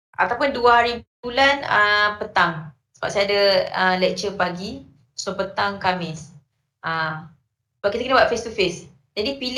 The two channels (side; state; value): both; identical; correlation 1.00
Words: ataupun 2 hari bulan petang. Sebab saya ada lecture pagi, so petang Khamis. Sebab kita kena buat face to face. Jadi